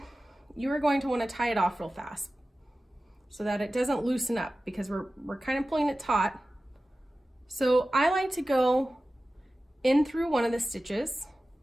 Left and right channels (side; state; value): both; normal; correlation 0.95